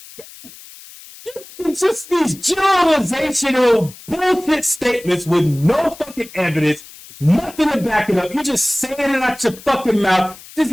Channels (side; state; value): left; noise; hiss, 19 dB below the sound